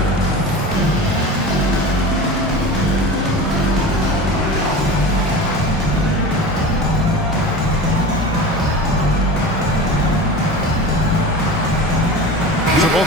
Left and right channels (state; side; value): normal; both; correlation 0.32